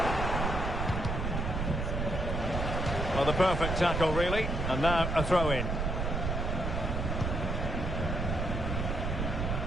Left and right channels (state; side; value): noise; right; rumble, 1 dB below the sound